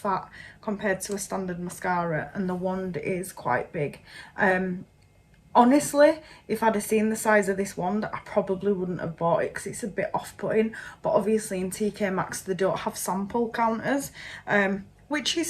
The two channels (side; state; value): both; identical; correlation 1.00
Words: compared to a standard mascara, and the wand is quite big. Honestly, if I'd have seen the size of this wand, I probably wouldn't have bought it, because it's a bit off-putting. But obviously in TK Maxx they don't have sample counters, which